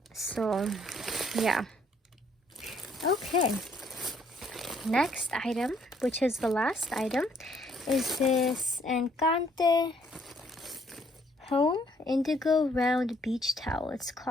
So, yeah. Okay. Next item, which is the last item, is this Encante Home Indigo Round Beach Towel. It's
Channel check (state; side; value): normal; both; correlation 0.66